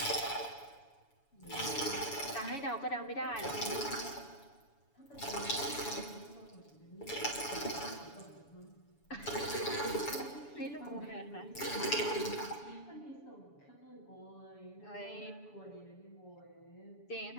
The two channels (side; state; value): right; late; 7.0 ms